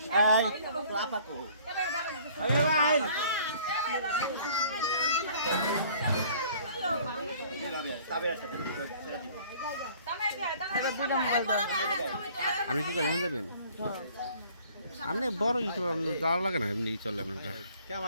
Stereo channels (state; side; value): inverted; both; correlation -0.54